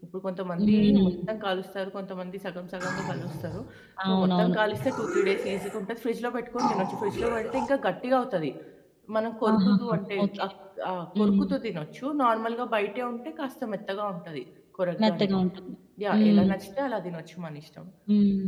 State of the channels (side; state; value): both; identical; correlation 1.00